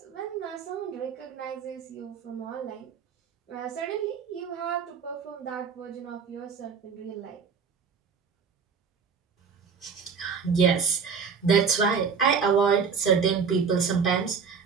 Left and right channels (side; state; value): left; quieter; 6.0 dB